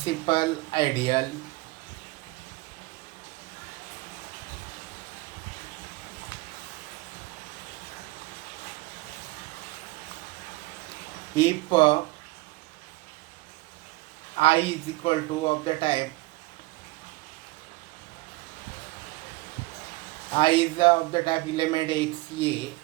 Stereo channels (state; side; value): quieter; left; 22.1 dB